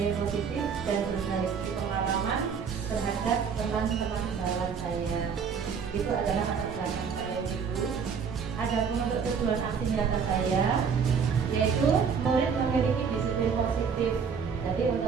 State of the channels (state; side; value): quieter; left; 6.3 dB